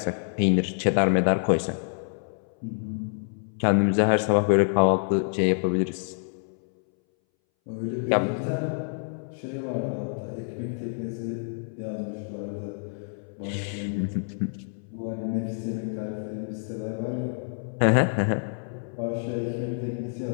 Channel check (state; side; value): silent; right; 60 dB below the other